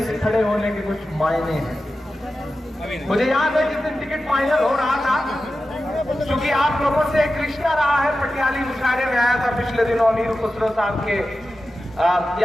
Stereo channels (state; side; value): normal; both; correlation 0.93